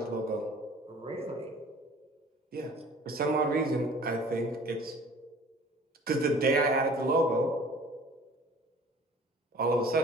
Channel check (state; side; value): normal; both; correlation 0.49